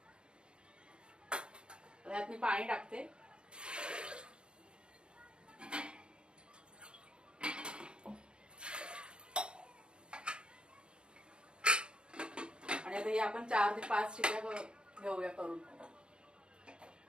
यात मी पाणी टाकते आणि आता हे आपण 4 ते 5 शिट्या घेऊया करून।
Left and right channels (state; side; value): late; left; 0.053 ms